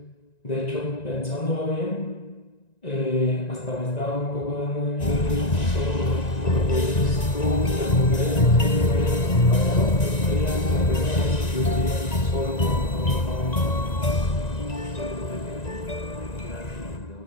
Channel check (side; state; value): right; late; 1.9 ms